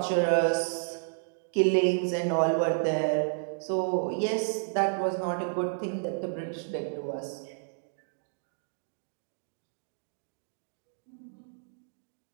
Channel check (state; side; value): silent; left; digital silence